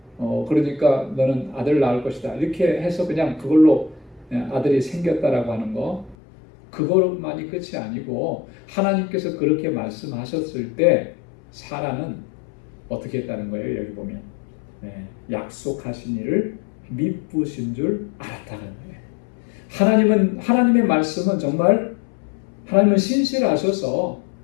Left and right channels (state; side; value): drops out; right; at 6.2 s